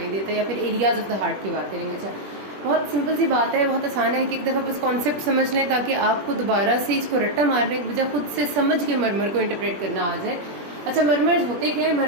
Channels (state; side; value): late; left; 20 ms